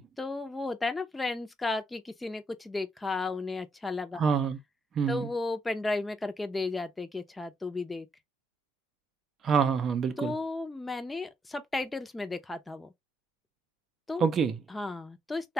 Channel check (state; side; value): normal; both; correlation 0.76